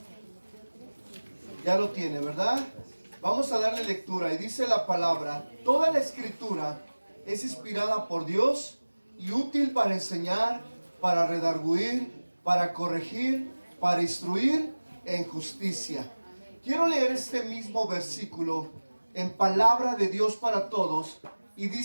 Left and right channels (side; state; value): both; inverted; correlation -1.00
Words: Ya lo tiene, ¿verdad? Vamos a darle lectura. Y dice la palabra: toda la escritura es inspirada por Dios y útil para enseñar, para redarguir, para corregir, para instruir en justicia. Quiero leer este mismo versículo en Palabra de Dios para Todos. Y